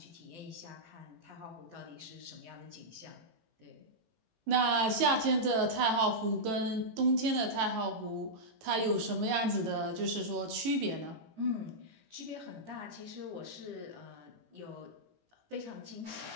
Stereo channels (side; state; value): left; late; 18 ms